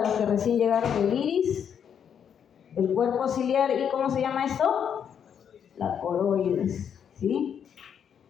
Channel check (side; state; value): right; quieter; 8.1 dB